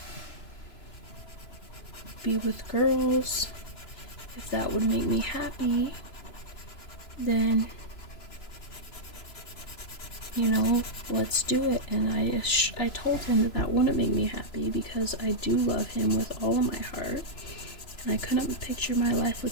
be with girls, if that would make me happy, then, let's do it. And I told him that wouldn't make me happy, because I do love him with all of my heart, and I couldn't picture my life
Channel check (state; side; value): late; right; 2.9 ms